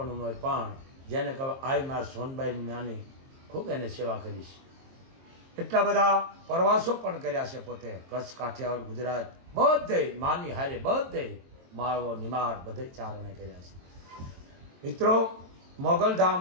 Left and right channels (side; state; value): left; late; 23 ms